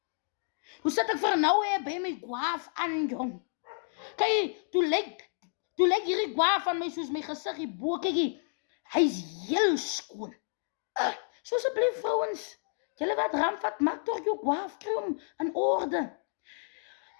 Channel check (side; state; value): right; silent; digital silence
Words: hoe sit ek vir nou by my gwaaf aan, jong. Kyk, toe lyk hierdie gwaaf van my soos my gesig hierbo, kyk, hy is heel skoon. So asseblief vrouens, julle wat ramvat, maak toch jou gwaaf, kry hom in orde.